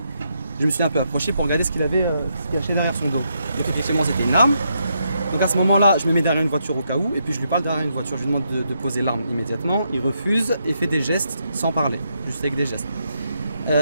je me suis un peu approché pour regarder ce qu'il avait caché derrière son dos. Donc effectivement, c'était une arme. Donc à ce moment-là, je me mets derrière une voiture au cas où. Et puis je lui parle derrière une voiture. Je lui demande de poser l'arme immédiatement. Il refuse et fait des gestes sans parler, juste avec des gestes.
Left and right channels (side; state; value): both; inverted; correlation -0.79